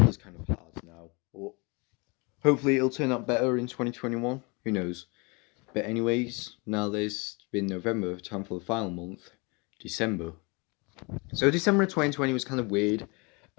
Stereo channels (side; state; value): right; quieter; 29.2 dB